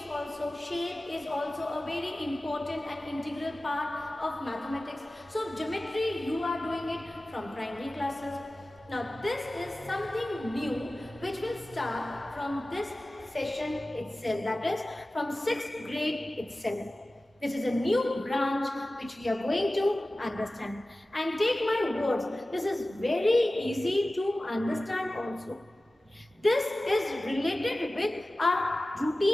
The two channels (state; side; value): normal; both; correlation 0.96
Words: also. Shape is also a very important and integral part of mathematics. So, geometry, you are doing it from primary classes. Now, this is something new which will start from this session itself, that is from 6th grade itself. This is a new branch which we are going to understand. And take my words, this is very easy to understand also. This is related with our